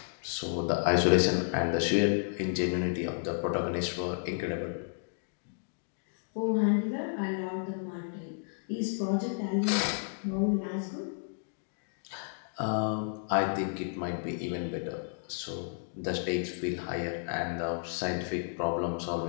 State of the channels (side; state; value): right; silent; digital silence